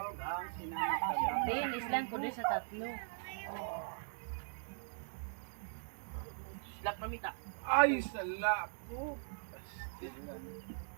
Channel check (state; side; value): silent; left; digital silence